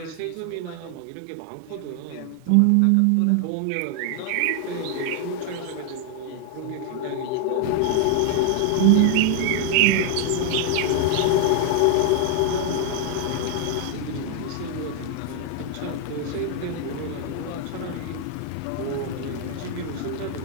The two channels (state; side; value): different; both; correlation 0.00